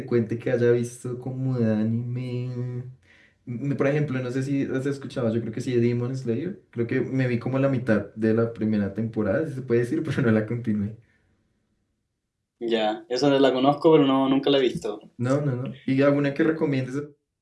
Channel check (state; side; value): identical; both; correlation 1.00